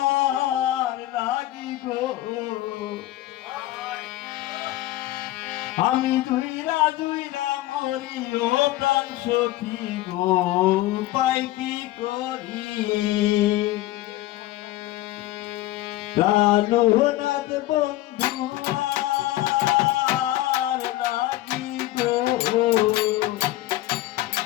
লাগি গো, আমি জুইরা জুইরা মরি ও প্রাণ সখী গো, পাই কি করি। কাননাথ বন্ধু আর লাগি গো,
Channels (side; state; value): right; quieter; 16.0 dB